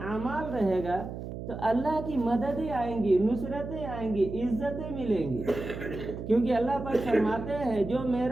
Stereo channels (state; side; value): noise; right; hum, 8 dB below the sound